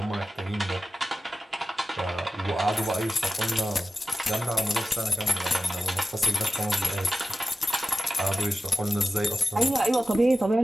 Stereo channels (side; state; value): both; normal; correlation 0.94